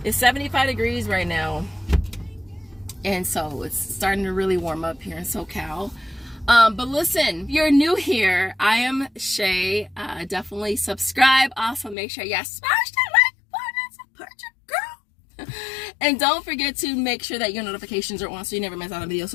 It's 75 degrees right now, and so it's starting to really warm up here in SoCal. But listen, if you're new here, I am Shay. Definitely subscribe. Also, make sure you smash that like button and support your girl. And don't forget to make sure that your notifications are on so you never miss out on a video.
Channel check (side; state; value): right; drops out; at 12.0 s